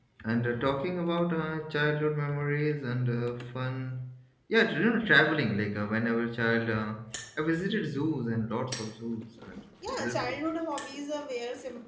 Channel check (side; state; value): both; identical; correlation 1.00